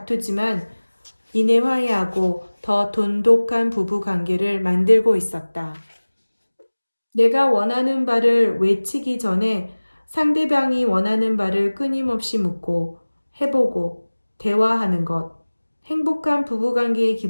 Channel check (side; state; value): both; inverted; correlation -1.00